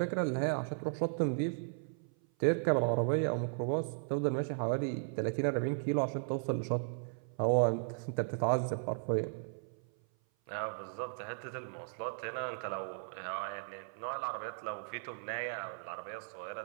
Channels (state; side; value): silent; left; 54 dB below the other